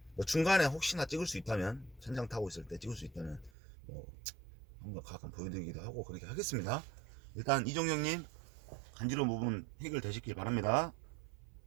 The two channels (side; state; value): left; drops out; at 3.5 s